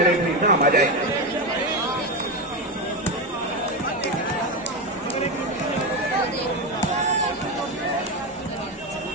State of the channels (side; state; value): both; normal; correlation 0.14